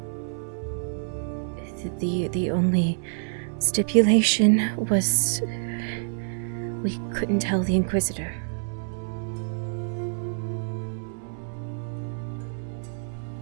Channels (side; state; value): left; silent; 60 dB below the other